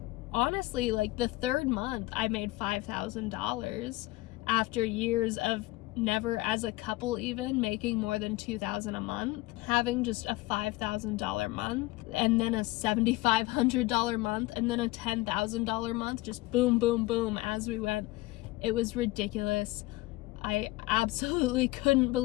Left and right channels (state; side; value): quieter; right; 19.6 dB